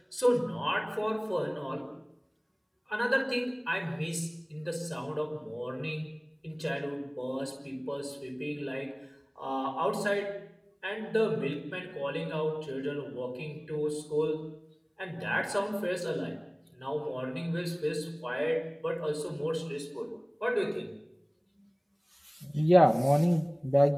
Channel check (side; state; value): both; identical; correlation 1.00